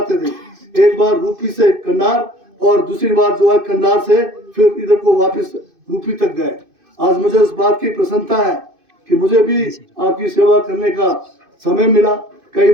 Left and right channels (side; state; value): left; late; 2.5 ms